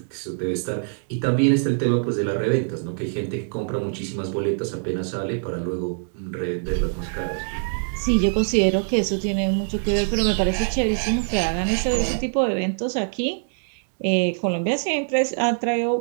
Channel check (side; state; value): left; silent; digital silence